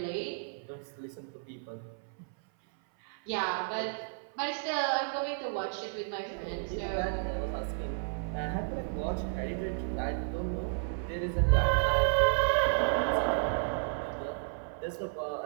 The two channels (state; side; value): silent; left; 56 dB below the other